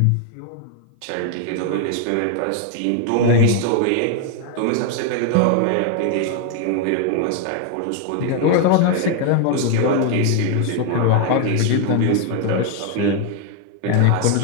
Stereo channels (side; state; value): both; different; correlation 0.01